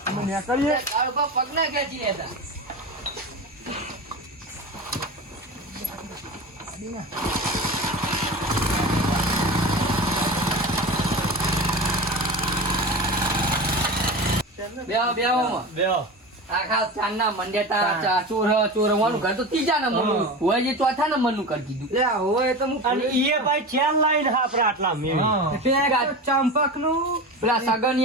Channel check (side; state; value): both; normal; correlation 0.28